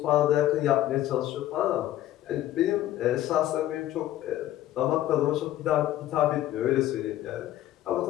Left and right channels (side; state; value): right; quieter; 13.7 dB